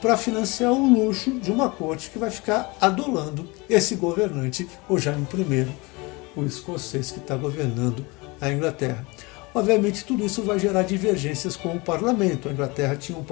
financiar o luxo de uma corte que vai ficar adulando esse governante, o Jaime I, o escocês que está governando a Inglaterra. Obviamente, tudo isso vai gerar divergências com o parlamento. A Inglaterra tinha um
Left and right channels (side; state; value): right; quieter; 25.6 dB